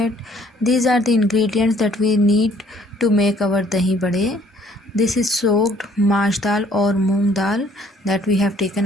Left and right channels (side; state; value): both; normal; correlation 0.60